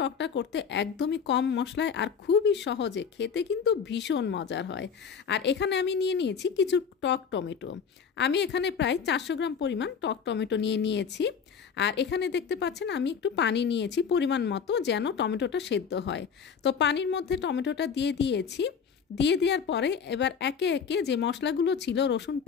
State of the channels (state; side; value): quieter; right; 6.6 dB